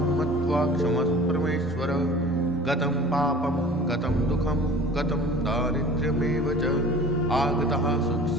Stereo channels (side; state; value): both; normal; correlation 0.43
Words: मत्वा क्षमस्व परमेश्वर। गतं पापं गतं दुःखं गतं दारिद्र्यमेव च आगतः